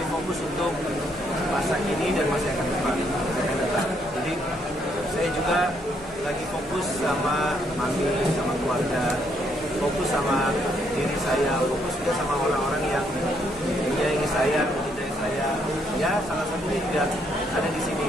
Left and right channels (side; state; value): left; noise; hum, 22 dB below the sound